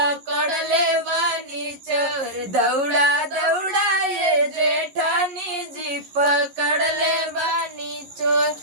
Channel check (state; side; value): late; left; 11 ms